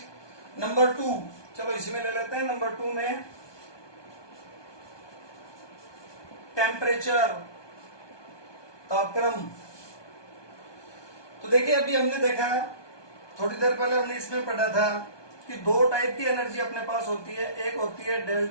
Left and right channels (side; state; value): right; late; 1.2 ms